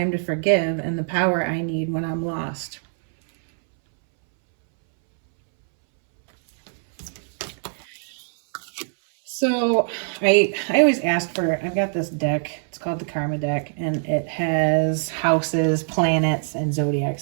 to forgive, and the power I need when I'm lost. So I always ask for, I've got this deck, it's called the Karma deck, and it has houses, planets, and zodiac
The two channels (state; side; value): silent; left; 63 dB below the other